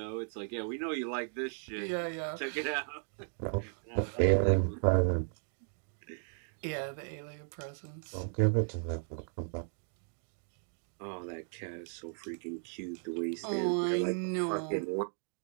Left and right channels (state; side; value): silent; left; 54 dB below the other